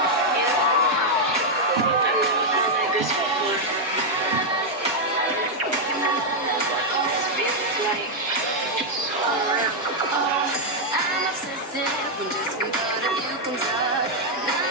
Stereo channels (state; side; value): normal; both; correlation -0.01